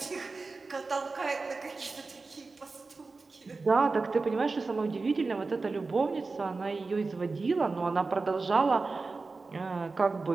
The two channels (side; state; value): left; quieter; 3.9 dB